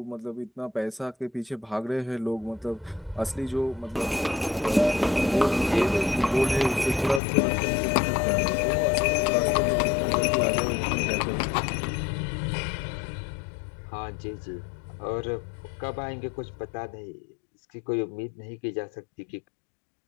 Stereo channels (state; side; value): drops out; right; at 7.2 s